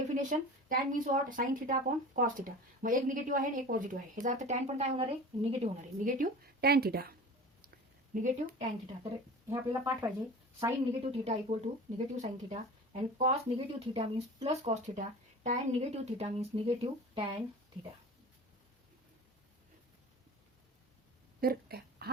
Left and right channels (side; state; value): both; normal; correlation 0.36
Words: tan means what? sin theta upon cos theta. मग एक negative आहे आणि एक positive आहे. ह्याचा अर्थ tan पण काय होणार आहे? निगेटिव्ह होणार आहे. Negative tan theta. Negative tan theta. तर हे आपल्याला पाठ पाहिजे. sin negative theta equal to negative sin theta and cos negative theta means plus cos theta. tan negative theta means negative tan theta. तर